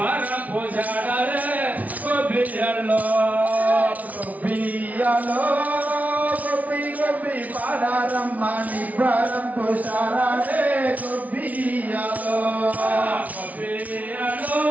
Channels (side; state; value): left; late; 0.072 ms